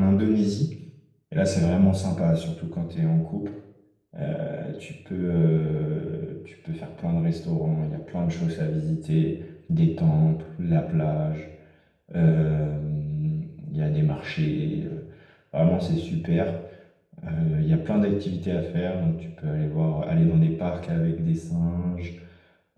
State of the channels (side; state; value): both; identical; correlation 1.00